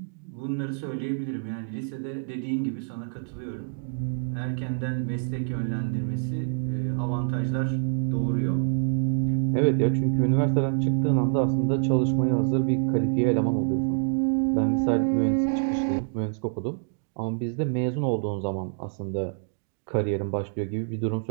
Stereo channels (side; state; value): left; silent; digital silence